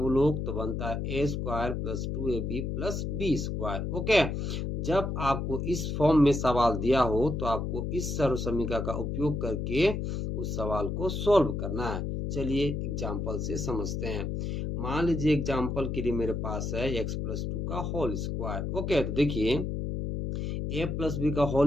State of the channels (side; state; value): left; noise; hum, 2 dB below the sound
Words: लोग? तो बनता है a square plus 2ab plus B square. Okay, जब आपको इस फॉर्म में सवाल दिया हो तो आपको इस सर्व समीका का उपयोग करके उस सवाल को सोल्व करना है। चलिए एग्जाम्पल से समझते हैं। मान लीजिए एग्जाम्पल के लिए मेरे पास है x प्लस 2 का होल स्क्वायर। ओके, तो देखिए a प्लस बी का